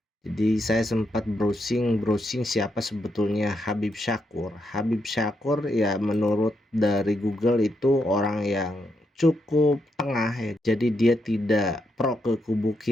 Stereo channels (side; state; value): both; normal; correlation 0.81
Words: Jadi saya sempat browsing siapa sebetulnya Habib Syakkur. Habib Syakkur ya menurut dari Google itu orang yang cukup tengah ya. Jadi dia tidak pro ke kubu